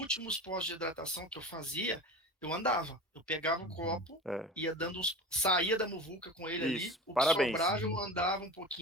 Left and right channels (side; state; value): both; normal; correlation 0.33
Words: postos de hidratação que eu fazia, eu andava. Eu pegava o copo, ia dando saía da muvuca com ele ali. O que sobrava, eu andava um